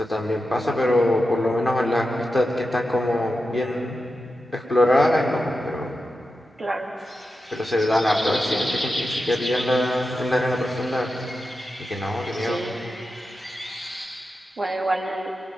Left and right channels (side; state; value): both; normal; correlation 0.90